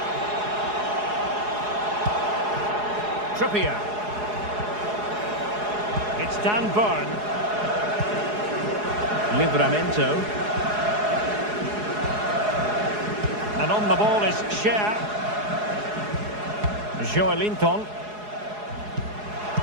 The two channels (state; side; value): late; left; 4.8 ms